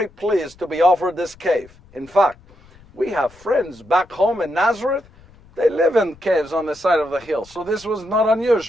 pleased to be offered this cave. In fact, we have friends back home in Nazareth. They live in caves on the side of the hill. So this was not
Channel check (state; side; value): noise; left; rumble, 26 dB below the sound